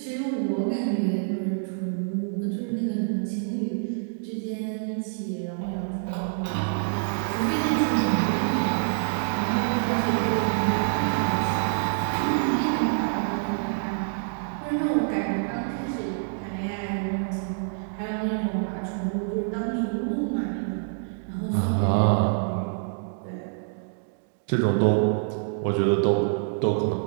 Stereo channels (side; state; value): left; silent; digital silence